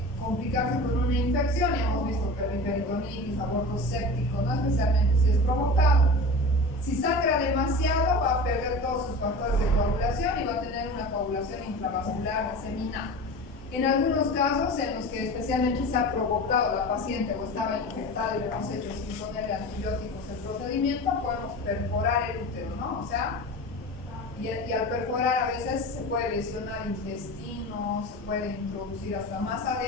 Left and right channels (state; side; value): normal; both; correlation 0.33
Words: complicarse con una infección, y hemos visto que la peritonitis, aborto séptico, no especialmente si es provocado. Si sangra demasiado, va a perder todos sus factores de coagulación y va a tener una coagulación intravascular diseminada. En algunos casos en los que especialmente se ha provocado la paciente o estaba infectada y le hemos hecho sin ponerle antibióticos el procedimiento, podemos perforar el útero, ¿no? O sea, y al perforar a veces se puede lesionar intestino, se puede introducir hasta más